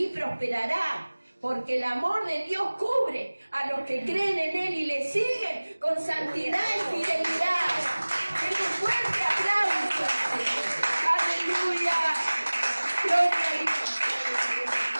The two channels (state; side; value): inverted; both; correlation -1.00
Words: prosperará, porque el amor de Dios cubre a los que creen en Él y le siguen con santidad y fidelidad. ¡Qué fuerte aplauso! ¡Aleluya! ¡Gloria a Dios!